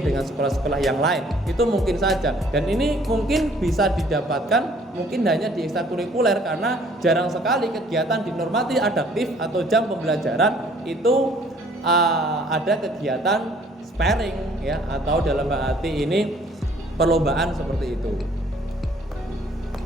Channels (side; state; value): both; normal; correlation 0.58